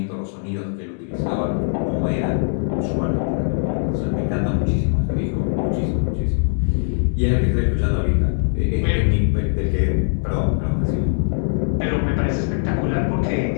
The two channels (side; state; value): right; silent; digital silence